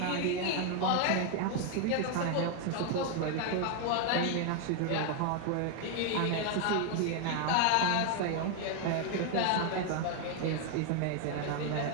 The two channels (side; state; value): both; different; correlation 0.00